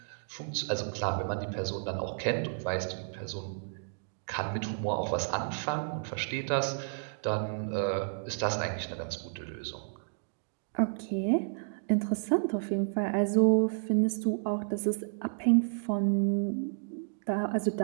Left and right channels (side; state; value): left; silent; digital silence